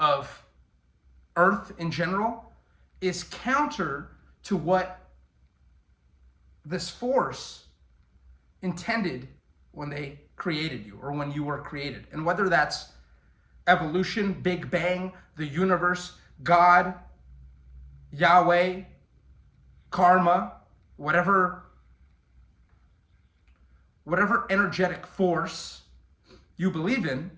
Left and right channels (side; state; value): both; identical; correlation 1.00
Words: Earth in general is counter to what this force intended when they created you or when you were created. And whether that's evolution, Big Bang, the universe, God, Yahweh, karma, whatever energetic force you believe in,